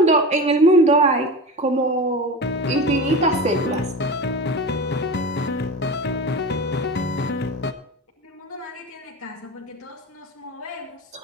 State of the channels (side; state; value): both; normal; correlation 0.28